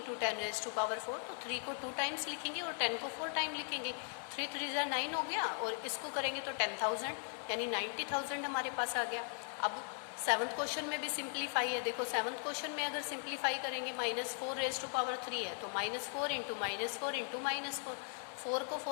10 raise to power 4। तो 3 को 2 टाइम्स लिखेंगे और 10 को 4 टाइम लिखेंगे। 3 3 जा 9 हो गया, और इसको करेंगे तो 10,000 यानी 90,000 हमारे पास आ गया। अब 7th क्वेश्चन में भी सिंप्लीफाई है। देखो 7th क्वेश्चन में अगर सिंप्लीफाई करेंगे -4 रेज टू पावर 3 है, तो -4 इंटू -4 इंटू -4, 4 को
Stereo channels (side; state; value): right; silent; 52 dB below the other